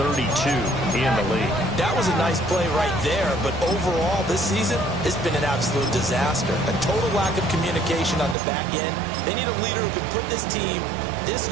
in the league. That was a nice play right there, but overall this season, it's been an absolute disaster. A total lack of communication on the back end. They need a leader who can put this team, this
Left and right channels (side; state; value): left; drops out; at 8.3 s